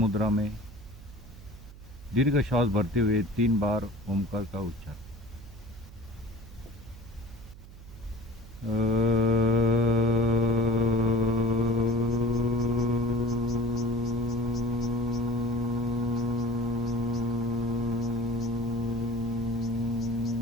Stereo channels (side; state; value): right; noise; hum, 18 dB below the sound